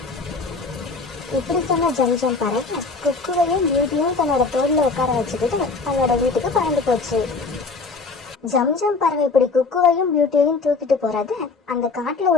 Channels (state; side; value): quieter; right; 4.2 dB